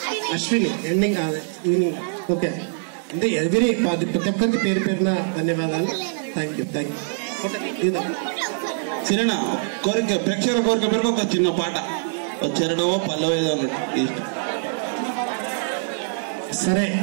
అశ్విని. Ending evening. ఓకే, అంటే ఎవరి ప్రతి ఒక్కరికి పేరు పేరున ధన్యవాదాలు. Thank you. చిన్న కోరిక, ప్రేక్షకుల కోరిక పేరుకు ఒక చిన్న పాట, చెరడమో పల్లవేదో అన్నట్టు. సరే,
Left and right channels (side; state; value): left; silent; digital silence